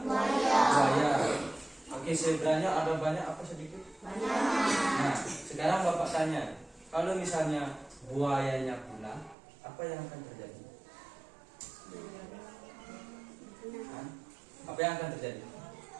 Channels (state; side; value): drops out; left; at 9.3 s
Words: buaya. Oke, zebranya ada banyak apa sedikit? Nah, sekarang Bapak tanya, kalau misalnya buayanya punah, apa yang akan terjadi? Apa yang akan terjadi?